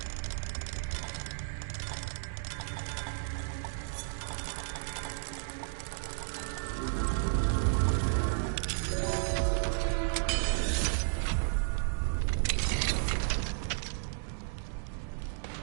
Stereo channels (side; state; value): left; silent; digital silence